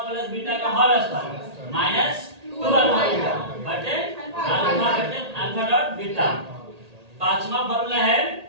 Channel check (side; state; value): left; late; 1.8 ms